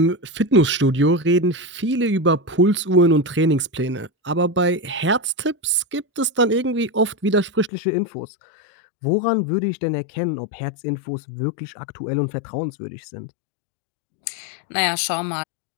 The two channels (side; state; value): right; drops out; at 7.7 s